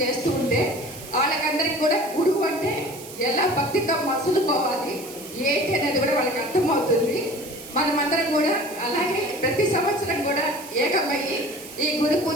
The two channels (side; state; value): right; noise; hiss, 15 dB below the sound